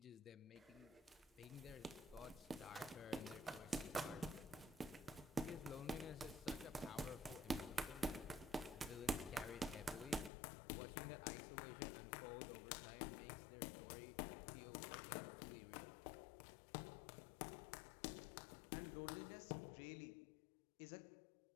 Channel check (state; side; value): drops out; right; at 10.3 s